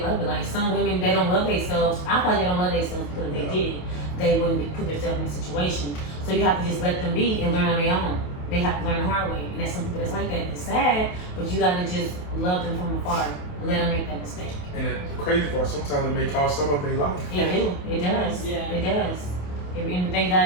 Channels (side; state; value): right; late; 28 ms